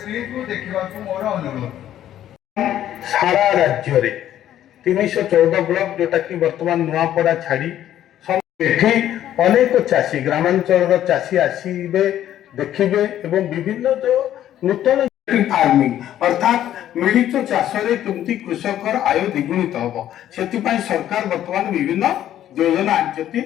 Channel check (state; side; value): quieter; right; 11.7 dB